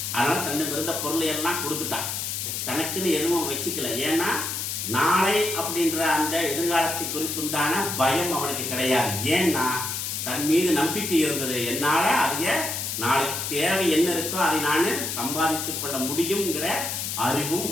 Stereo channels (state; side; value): noise; left; hiss, 3 dB below the sound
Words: அதனால தன்னுக்கு இருந்த பொருளை எல்லாம் கொடுத்துட்டான், தனக்குன்னு எதுவும் வச்சுக்கல. ஏன்னா நாளை அப்படின்ற அந்த எதிர்காலத்தை குறித்துண்டான பயம் அவனுக்கு கிடையாது. ஏன்னா தன் மீது நம்பிக்கை இருந்தது. என்னால அதைய நாளைக்கு தேவை என்ன இருக்கோ அதை நான் சம்பாதித்துக் கொள்ள முடியுங்கிற அறிவும்